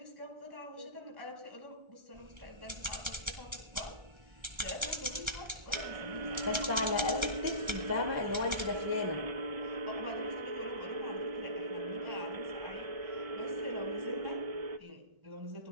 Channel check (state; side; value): late; left; 1.3 ms